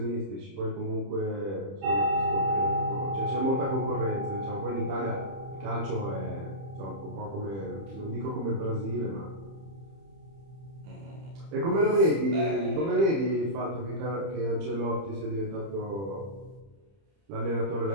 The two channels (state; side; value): late; left; 30 ms